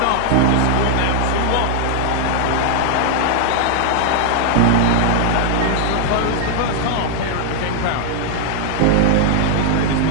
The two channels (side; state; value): both; different; correlation 0.00